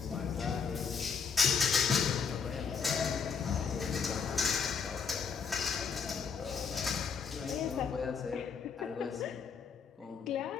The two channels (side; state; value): right; quieter; 6.1 dB